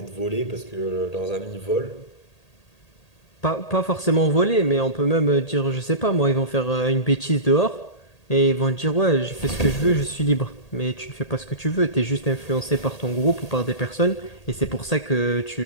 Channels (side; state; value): right; late; 1.8 ms